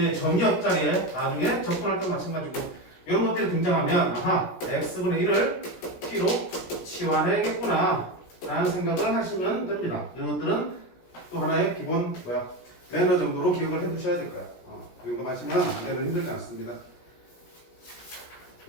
정의 옆자리에 나중에 접근할 때도 마찬가지고 이런 것들이 등장하면 아하, x분의 1을 t로 치환해야겠구나 라는 생각을 하시면 됩니다. 이런 것들은 또 하나의 기본 매너 정도로 기억을 해두셔야 될 거야. 이 정도 마시면 문제는 힘들지 않습니다.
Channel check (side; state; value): right; late; 16 ms